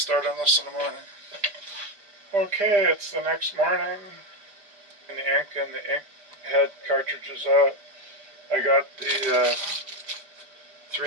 start on this in the morning. Okay, it's the next morning, and the ink head cartridge is out. I got the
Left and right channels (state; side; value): late; left; 5.0 ms